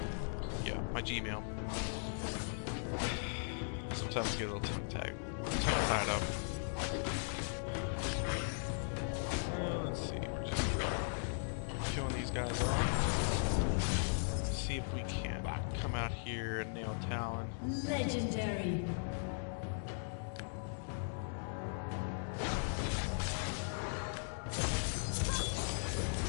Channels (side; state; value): right; silent; digital silence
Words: my Gmail. Sometimes I get a little tied up. Let's see, we're just killing these guys off. See if we can come out here and nail Talon. Legendary.